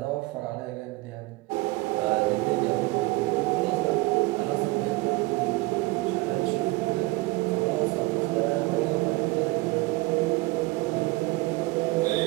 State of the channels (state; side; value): quieter; left; 22.0 dB